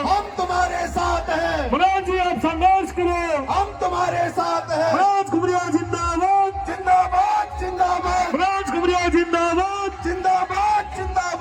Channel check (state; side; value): identical; both; correlation 1.00